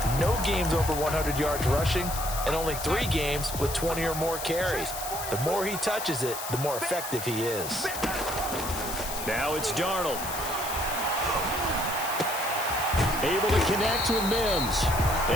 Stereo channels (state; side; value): noise; left; hiss, 7 dB below the sound